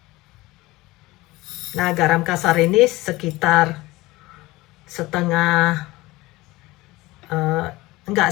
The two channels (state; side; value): quieter; right; 20.0 dB